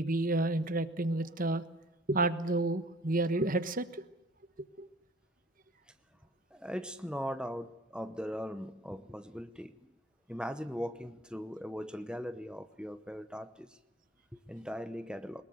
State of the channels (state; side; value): normal; both; correlation 0.51